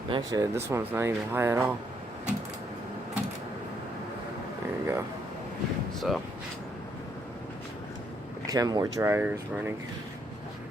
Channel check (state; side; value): normal; both; correlation 0.72